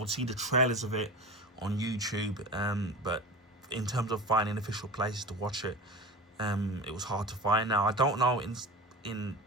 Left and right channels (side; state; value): both; normal; correlation 0.32